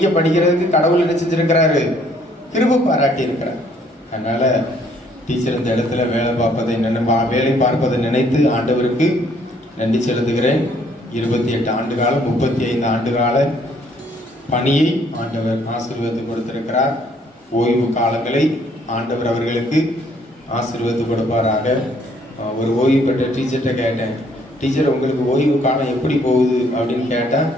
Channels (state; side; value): normal; both; correlation 0.64